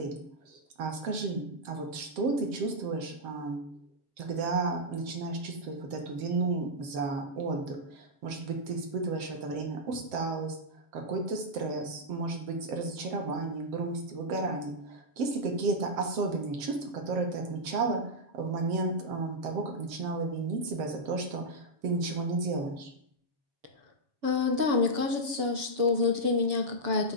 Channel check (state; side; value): late; left; 7.8 ms